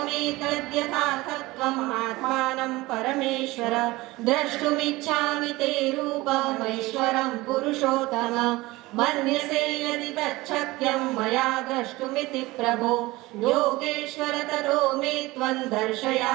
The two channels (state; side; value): quieter; left; 20.3 dB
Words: आत्मानं परमेश्वर द्रष्टुमिच्छामि ते रूपमैश्वरं पुरुषोत्तम मन्यसे यदि तच्छक्यं मया द्रष्टुमिति प्रभो योगेश्वर ततो मे त्वं